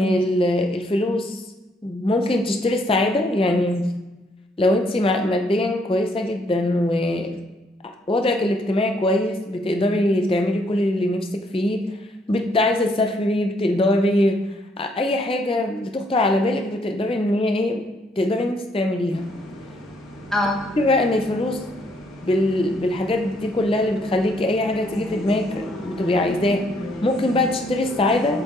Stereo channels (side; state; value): both; normal; correlation 0.69